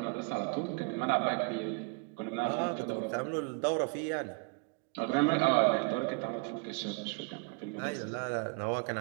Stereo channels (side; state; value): left; quieter; 30.4 dB